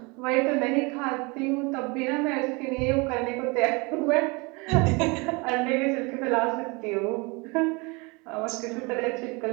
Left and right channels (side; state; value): left; quieter; 27.7 dB